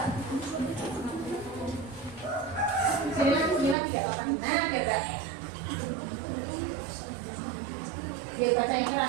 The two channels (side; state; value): left; drops out; at 3.8 s